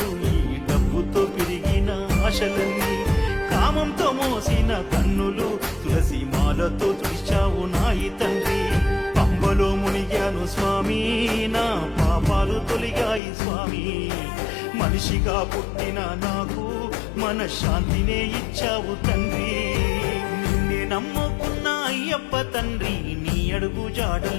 ఈ డబ్బుతో పెరిగిన ఆశలన్నీ కామంతో మోసిన కన్నులు తులసి మాలతో తుడిచావు నాయి తండ్రి పంబలో మునిగాను స్వామి నా పాపాలు తొలిగాయి స్వామి మనిషిగా పుట్టిన నాకు మనశ్శాంతినే ఇచ్చావు తండ్రి నిన్నే నమ్ముకున్న అయ్యప్ప తండ్రి నీ అడుగు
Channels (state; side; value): drops out; right; at 13.2 s